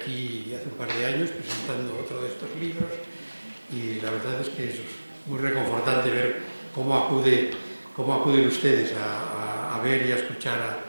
hace un par de años presentando otro de estos libros y la verdad es que es muy reconfortante ver cómo acuden ustedes a ver y a escuchar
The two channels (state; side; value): inverted; both; correlation -1.00